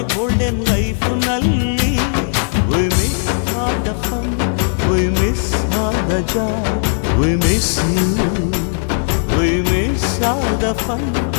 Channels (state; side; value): silent; right; 68 dB below the other